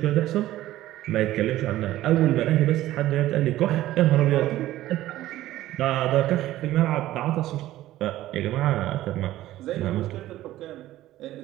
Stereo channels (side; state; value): left; quieter; 14.9 dB